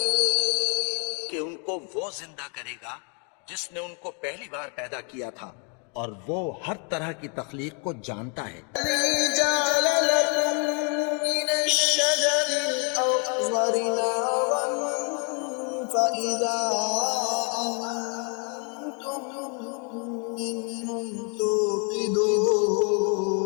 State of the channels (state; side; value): quieter; right; 38.1 dB